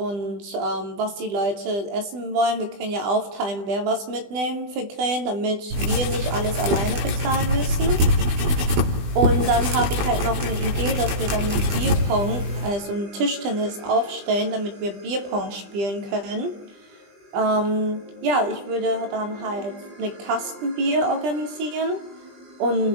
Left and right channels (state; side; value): late; left; 20 ms